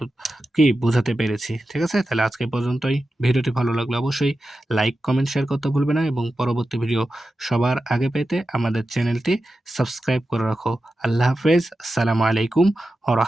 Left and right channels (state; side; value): normal; both; correlation 0.92